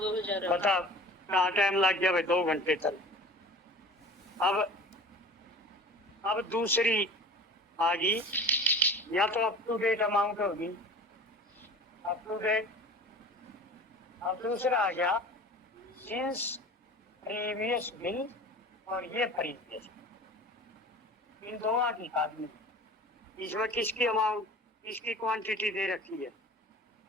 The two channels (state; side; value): normal; both; correlation 0.40